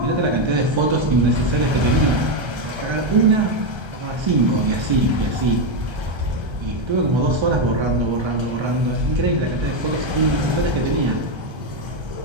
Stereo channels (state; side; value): late; left; 1.3 ms